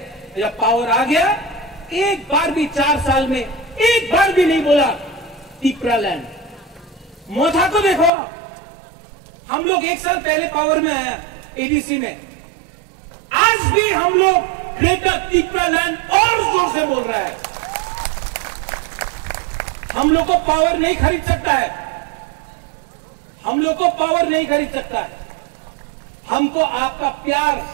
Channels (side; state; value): left; drops out; at 8.1 s